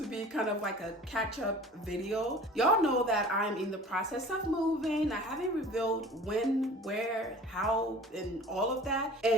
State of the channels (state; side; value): normal; both; correlation 0.43